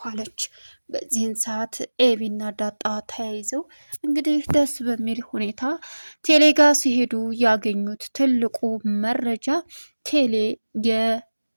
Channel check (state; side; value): inverted; both; correlation -1.00